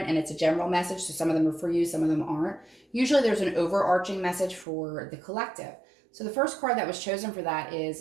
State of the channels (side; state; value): left; drops out; at 4.7 s